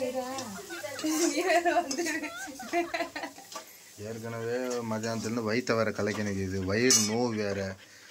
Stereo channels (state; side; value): identical; both; correlation 1.00